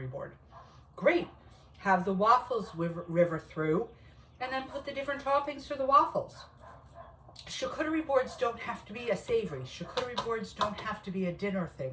board. Great. Have the waffles river through and then put the different toppings for the waffles. Charcuterie boards don't have to be a savory. Charcuterie boards don't have to be a dinner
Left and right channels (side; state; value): both; identical; correlation 1.00